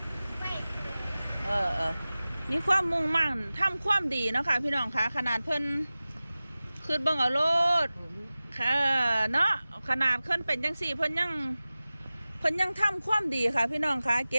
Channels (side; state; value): both; inverted; correlation -0.97